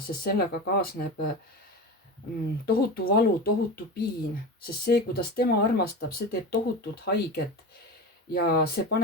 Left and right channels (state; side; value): normal; both; correlation 0.26